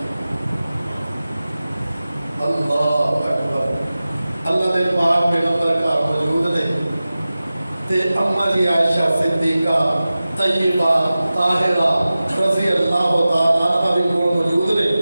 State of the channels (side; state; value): both; inverted; correlation -0.96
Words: اللہ اکبر اللہ دے پاک پیغمبر کا موجود نے تے اما جی عائشہ صدیقہ طیبہ طاہرہ رضی اللہ تعالیٰ عنہ بھی موجود نے